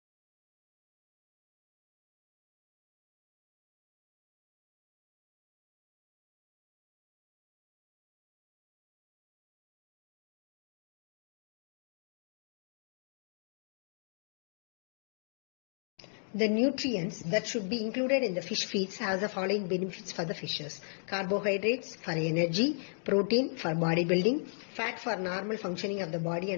The nutrients that should be included in the fish feeds has the following benefits for the fishes. Carbohydrates for energy, protein for bodybuilding, fat for normal functioning of the body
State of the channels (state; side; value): silent; right; digital silence